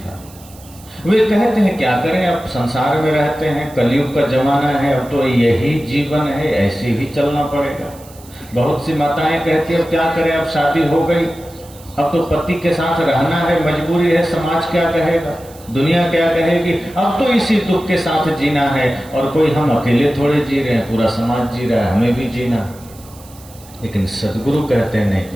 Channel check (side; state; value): right; noise; hiss, 23 dB below the sound